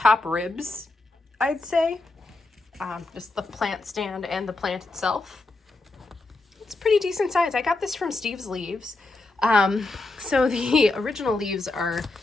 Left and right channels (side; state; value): right; quieter; 3.1 dB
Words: ribs, I'd say. Just the plant stand and the plant itself. It's pretty decent size. I got this from Steve's Leaves. So the original leaves are